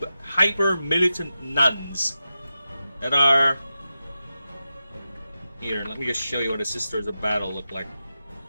hyper-militant nuns that are... Here, let me just show you what the Sisters of Battle look like.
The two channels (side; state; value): both; inverted; correlation -0.91